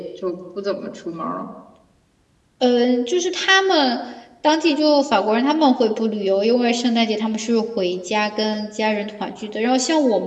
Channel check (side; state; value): both; identical; correlation 1.00